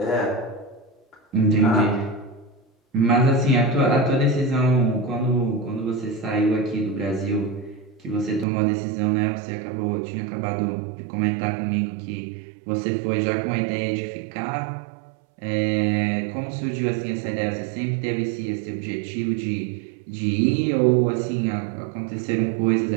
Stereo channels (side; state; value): left; drops out; at 8.5 s